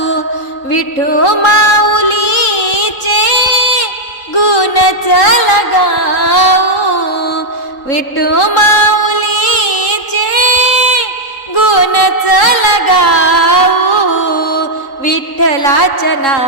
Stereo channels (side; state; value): right; late; 3.9 ms